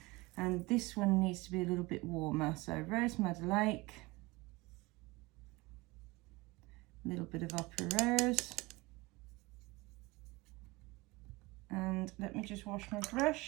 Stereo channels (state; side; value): quieter; left; 22.4 dB